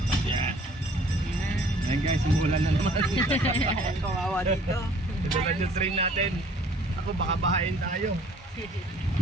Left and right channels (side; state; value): both; normal; correlation 0.55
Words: Ayan guys, umulan na naman. Kawawa dito. Ito lang yung train natin. Ako baka bahain tayo.